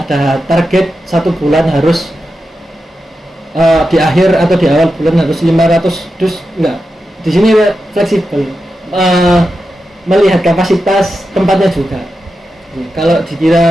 ada target 1 bulan harus di akhir atau di awal bulan harus 500 dus, enggak. Di sini fleksibel. Melihat kapasitas tempatnya juga. Kalau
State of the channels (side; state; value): both; normal; correlation 0.89